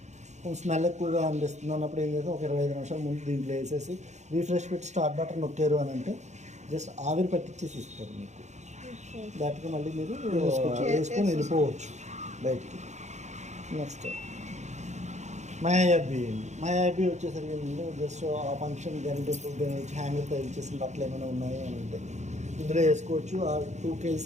స్మెల్ ఎక్కువగా అనిపిస్తుంది అన్నప్పుడు ఏం చేస్తాం, ఒక 25 నిమిషాల ముందు దీంట్లో వేసేసి రీఫ్రెష్ పెట్టి స్టార్ట్ బటన్ నొక్కారు అని అంటే జస్ట్ ఆవిరి పట్టించేసి ఇస్తారు మీకు. దాటికి మళ్ళీ మీరు వేసుకొని వెళ్ళిపోవచ్చు బయటికి. నెక్స్ట్ మయాబీ వచ్చేసరికి ఏంటంటే జస్ట్ ఆ ఫంక్షన్ గంటే హ్యాంగర్ తయారు చేసిన బట్టలు ఏమైనా ఉన్నాయి అని అంటే ఇందులో వేసుకోవచ్చు. ఆ 2 kg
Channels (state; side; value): late; left; 0.33 ms